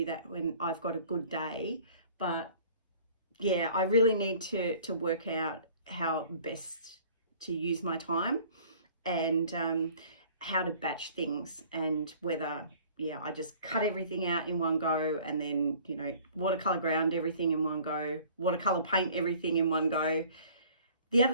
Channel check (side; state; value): both; inverted; correlation -0.51